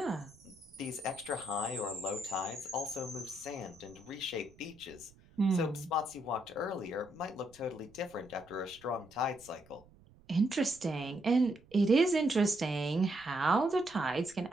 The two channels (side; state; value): right; noise; rumble, 26 dB below the sound